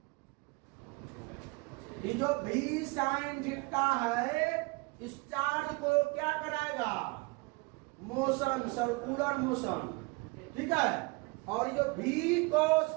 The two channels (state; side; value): quieter; left; 27.1 dB